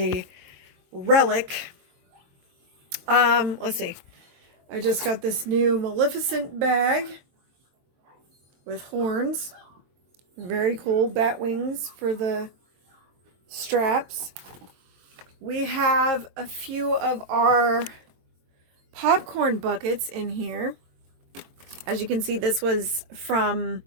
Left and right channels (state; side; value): late; left; 22 ms